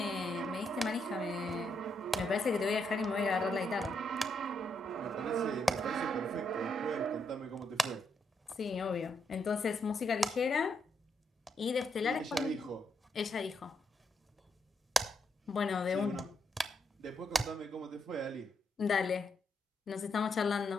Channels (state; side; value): normal; both; correlation 0.78